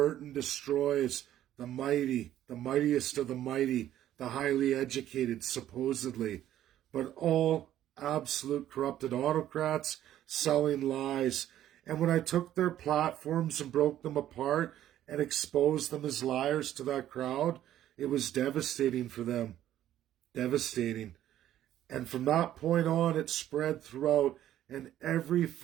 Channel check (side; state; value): left; quieter; 12.3 dB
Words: destroys the mighty, the mightiest of the mighty, the highly educated, supposedly, but all absolute corrupted autocrats selling lies. And when I took their platforms and broke them apart and exposed them as liars to that crowd, it was devastating for them. Devastating. And from that point on, it spread throughout, and every